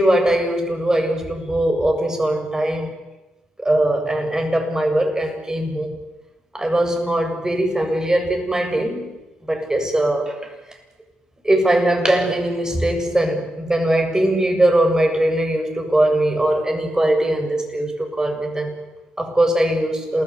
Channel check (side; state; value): both; normal; correlation 0.89